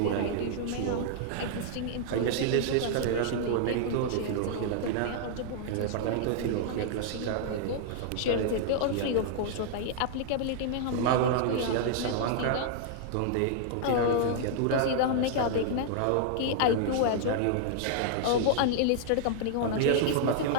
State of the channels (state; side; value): different; both; correlation -0.01